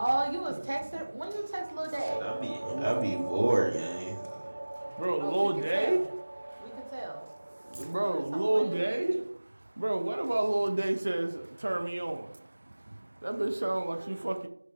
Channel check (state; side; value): inverted; both; correlation -1.00